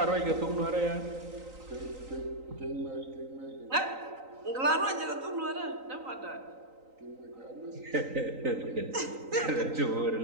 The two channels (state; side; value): late; left; 3.9 ms